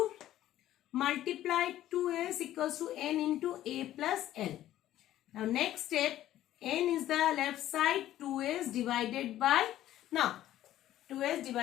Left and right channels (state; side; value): quieter; right; 13.2 dB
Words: Multiply 2s equals to n into a plus l. Now next step, n is the left side, 2s divided by, now 2s